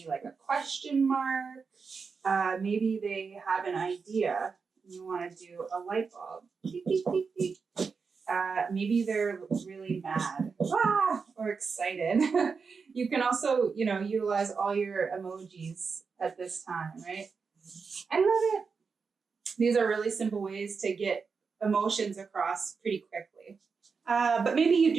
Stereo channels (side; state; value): left; quieter; 5.2 dB